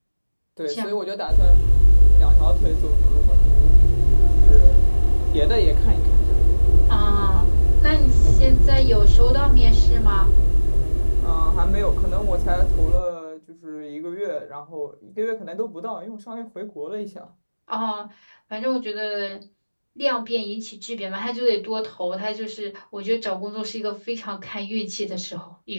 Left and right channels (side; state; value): both; inverted; correlation -1.00